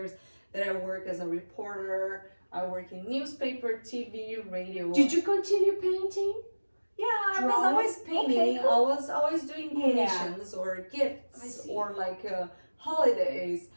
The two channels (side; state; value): both; inverted; correlation -1.00